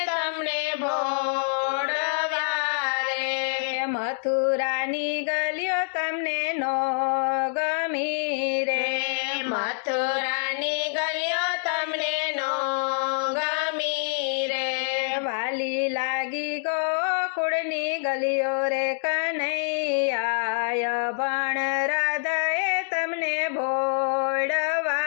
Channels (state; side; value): silent; right; digital silence